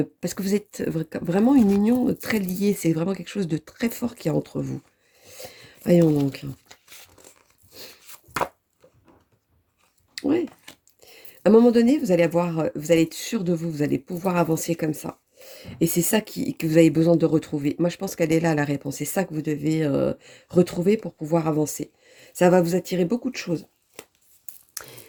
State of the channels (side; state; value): both; identical; correlation 1.00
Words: que vous êtes vraiment une union très liée, c'est vraiment quelque chose de très fort qu'il y a entre vous. Voyons donc. Ouais. À un moment donné, vous allez être sûr de vous, vous allez pouvoir avancer comme ça. Et c'est ça que vous avez besoin de retrouver. Moi, je pense qu'elle est là, la réponse. C'est ça que vous devez retrouver pour pouvoir avancer. Ça va vous attirer beaucoup de choses.